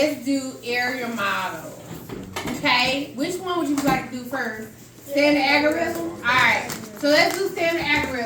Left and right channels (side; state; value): both; identical; correlation 1.00